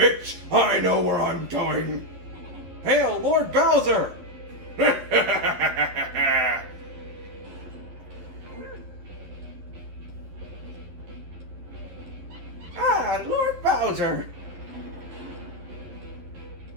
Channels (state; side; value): late; left; 11 ms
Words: I know where I'm going! Hail, Lord Bowser! Ah, Lord Bowser!